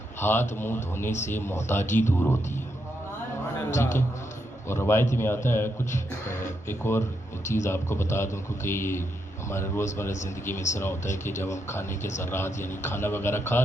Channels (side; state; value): both; normal; correlation 0.81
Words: ہاتھ منہ دھونے سے محتاجی دور ہوتی ہے۔ ٹھیک ہے، اور روایت میں آتا ہے کچھ ایک اور چیز آپ کو بتا دوں، کیونکہ یہ ہمارے روزمرہ زندگی میں اس طرح ہوتا ہے کہ جب ہم کھانے کے ذرات یعنی کھانا وغیرہ کھا